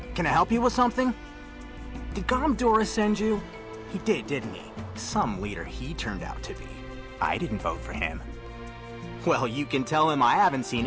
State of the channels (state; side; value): identical; both; correlation 1.00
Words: Can I help you with something? Did Gomdora send you? He did, didn't he? Some leader he turned out to be. I didn't vote for him. Well, you can tell him I haven't seen